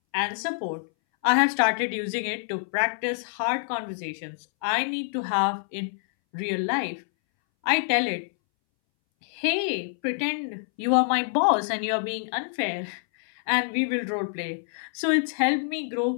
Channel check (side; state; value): right; silent; 61 dB below the other